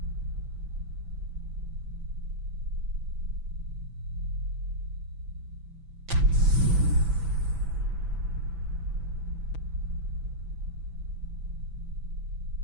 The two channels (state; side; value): late; left; 6.0 ms